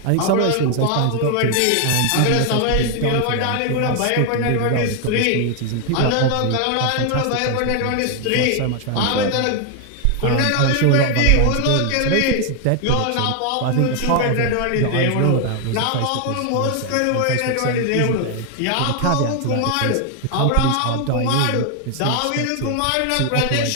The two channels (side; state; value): both; different; correlation 0.00